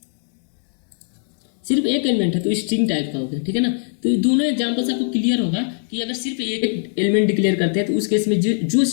सिर्फ एक एलिमेंट है तो स्ट्रिंग टाइप का हो गया, ठीक है ना। तो ये दोनों एग्जांपल से आपको क्लियर होगा कि अगर सिर्फ एक एलिमेंट डिक्लेयर करते हैं तो उस केस में जो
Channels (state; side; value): silent; right; digital silence